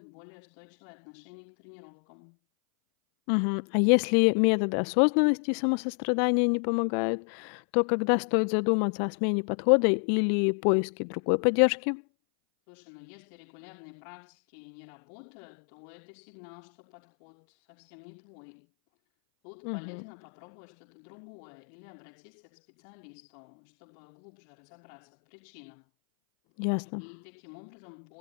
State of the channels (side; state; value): right; silent; 59 dB below the other